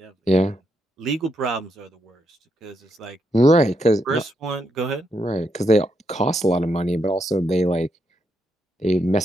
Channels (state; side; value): normal; both; correlation 0.80